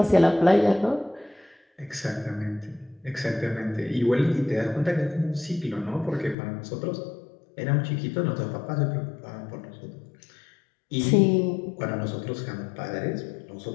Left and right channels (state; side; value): drops out; right; at 6.4 s